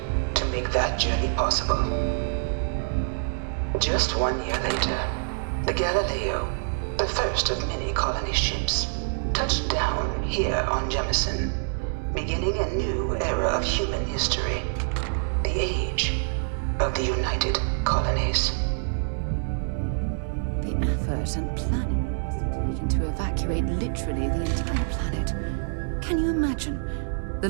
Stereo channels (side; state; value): left; silent; 61 dB below the other